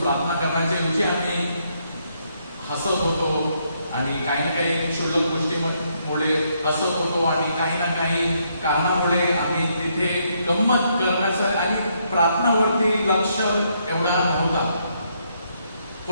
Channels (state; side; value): inverted; both; correlation -0.74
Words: प्रार्थना करण्याच्या ऐवजी आम्ही हसत होतो आणि काही ना काही क्षुल्लक गोष्टीमुळे हसत होतो आणि काही ना काही कारणामुळे आम्ही तिथे गंमत करण्याचं आणि प्रार्थनावरती लक्ष एवढा नव्हता.